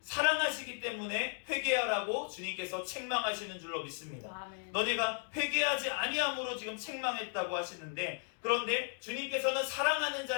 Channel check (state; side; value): silent; right; 54 dB below the other